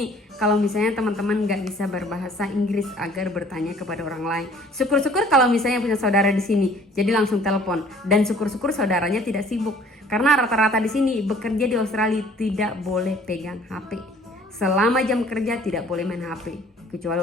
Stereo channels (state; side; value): normal; both; correlation 0.55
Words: kalau misalnya teman-teman nggak bisa berbahasa Inggris agar bertanya kepada orang lain. Syukur-syukur kalau misalnya punya saudara di sini, jadi langsung telepon. Dan syukur-syukur saudaranya tidak sibuk, karena rata-rata di sini bekerja di Australia tidak boleh pegang HP. Selama jam kerja tidak boleh main HP, kecuali